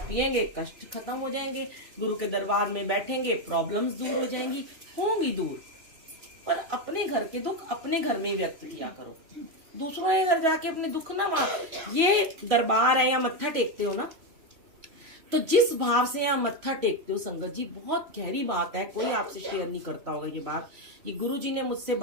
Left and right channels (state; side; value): late; left; 3.0 ms